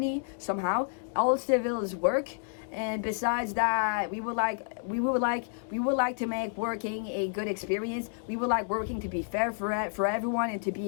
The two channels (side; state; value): right; silent; 58 dB below the other